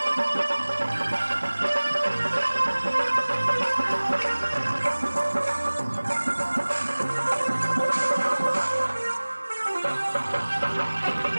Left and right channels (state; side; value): inverted; both; correlation -1.00